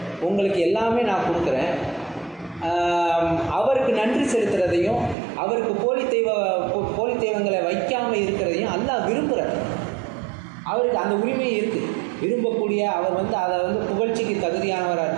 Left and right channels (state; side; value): drops out; left; at 5.2 s